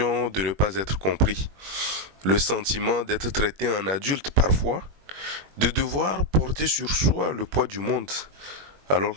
de ne pas être compris, le sentiment d'être traité en adulte parfois, de devoir porter sur soi le poids du monde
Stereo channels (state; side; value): late; left; 21 ms